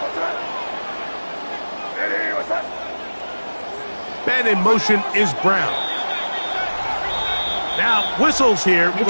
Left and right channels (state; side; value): inverted; both; correlation -1.00